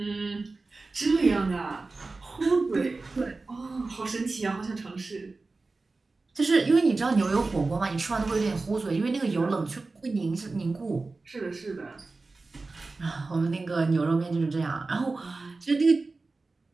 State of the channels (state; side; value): quieter; left; 3.6 dB